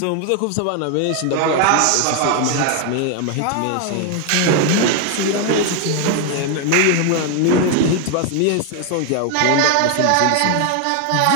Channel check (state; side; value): different; both; correlation 0.01